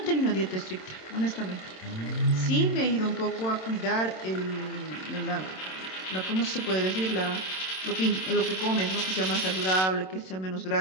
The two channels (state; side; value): late; right; 27 ms